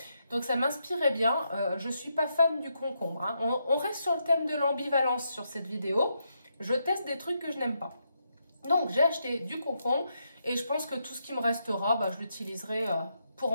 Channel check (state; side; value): inverted; both; correlation -0.81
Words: Donc ça m'inspirait bien. Je ne suis pas fan du concombre. Hein. On reste sur le thème de l'ambivalence sur cette vidéo. Je teste des trucs que je n'aime pas. Donc j'ai acheté du concombre et je pense que tout ce qui me restera, je l'utiliserai pour